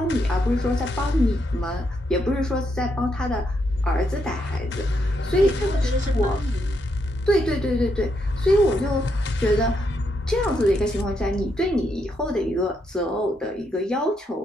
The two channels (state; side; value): normal; both; correlation 0.79